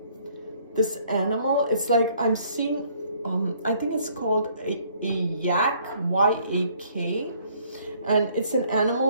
this animal. It's like I'm seeing, I think it's called a yak, Y-A-K. And it's an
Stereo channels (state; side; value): inverted; both; correlation -0.62